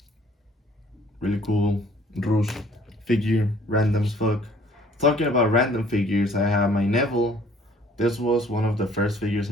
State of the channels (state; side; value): normal; both; correlation 0.57